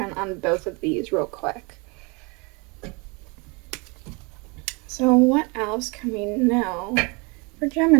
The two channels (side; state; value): left; quieter; 29.8 dB